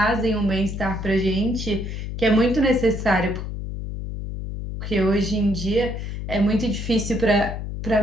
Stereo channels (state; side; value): noise; left; hum, 6 dB below the sound